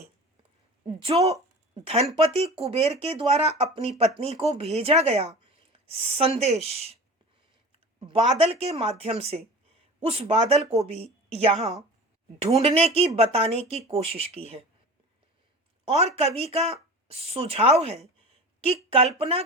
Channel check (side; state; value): both; normal; correlation 0.36